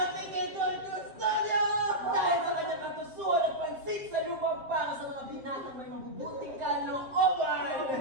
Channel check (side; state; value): left; late; 7.5 ms